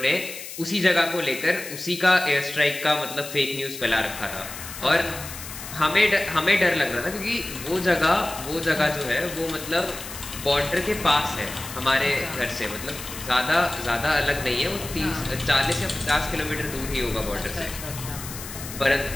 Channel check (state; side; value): noise; left; hiss, 11 dB below the sound